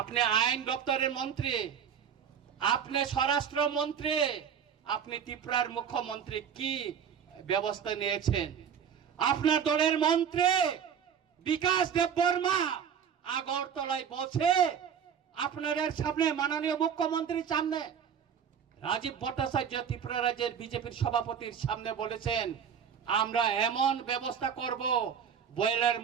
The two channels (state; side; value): quieter; left; 7.8 dB